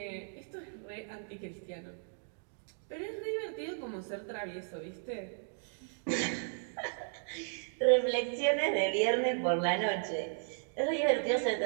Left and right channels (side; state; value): left; silent; digital silence